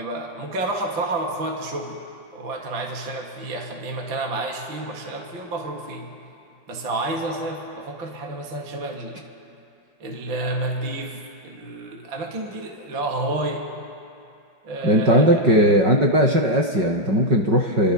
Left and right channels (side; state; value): left; late; 5.3 ms